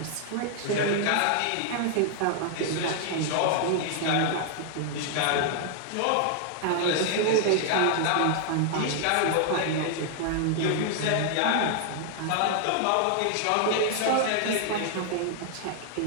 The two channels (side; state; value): both; different; correlation 0.00